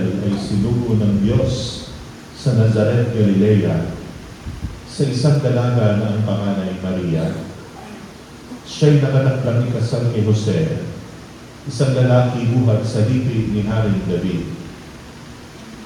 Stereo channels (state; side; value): identical; both; correlation 1.00